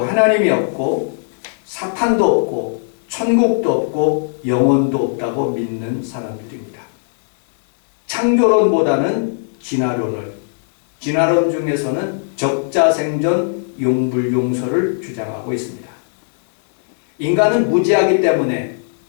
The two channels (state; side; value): silent; right; digital silence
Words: 없고 사탄도 없고 천국도 없고 영혼도 없다고 믿는 사람들입니다. 창조론보다는 진화론 중에서는 적자생존, 용불용설을 주장하고 있습니다. 인간은 무지하기 때문에,